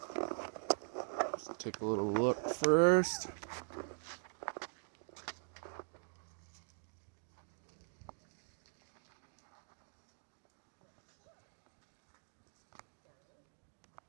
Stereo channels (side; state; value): left; silent; digital silence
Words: Just take a little look first.